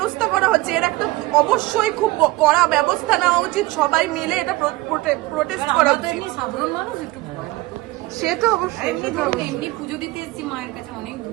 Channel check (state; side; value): quieter; left; 20.1 dB